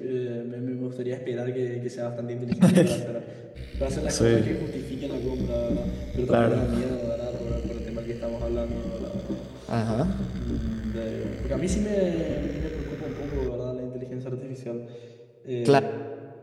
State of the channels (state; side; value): identical; both; correlation 1.00